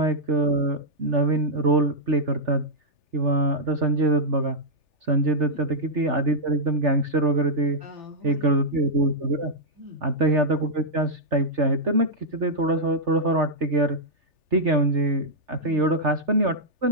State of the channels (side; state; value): left; late; 3.4 ms